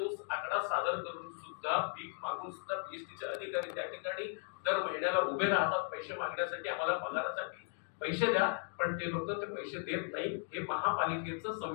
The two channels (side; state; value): right; silent; 53 dB below the other